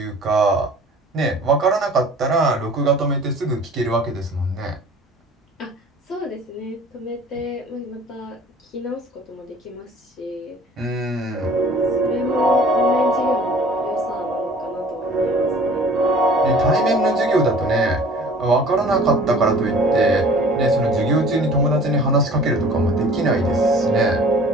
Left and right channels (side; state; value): both; normal; correlation 0.48